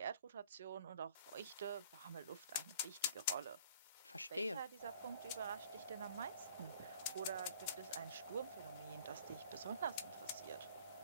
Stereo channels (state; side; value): inverted; both; correlation -0.52